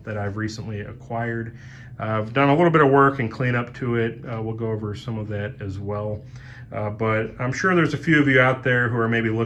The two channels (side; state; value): both; identical; correlation 1.00